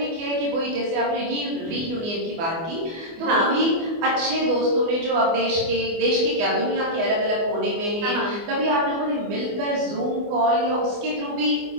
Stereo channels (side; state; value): left; late; 24 ms